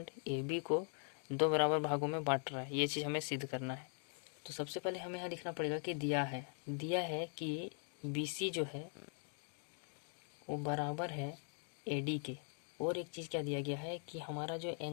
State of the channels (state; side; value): silent; right; 50 dB below the other